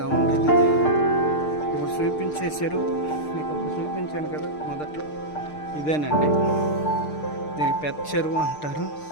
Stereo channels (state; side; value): late; right; 6.6 ms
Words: ఉండేది. ఇప్పుడు చూపించే చెరువు మీకు ఇప్పుడు చూపించాను కదా మొదట్లో, ఇదేనండి. దీనికి పెద్ద చెరువు అంటారు.